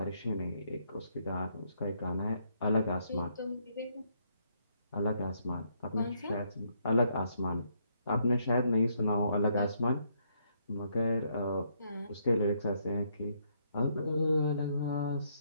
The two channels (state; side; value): inverted; both; correlation -0.73